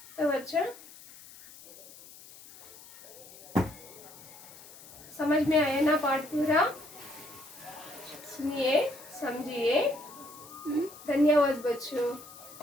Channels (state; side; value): noise; left; hiss, 19 dB below the sound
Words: तो बच्चों समझ में आया ना पाठ पूरा? सुनिए, समझिए। धन्यवाद बच्चों।